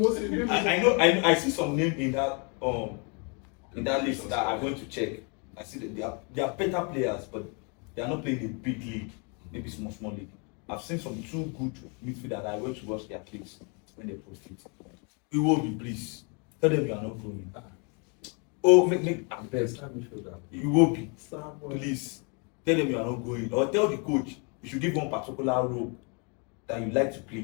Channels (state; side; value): quieter; right; 35.1 dB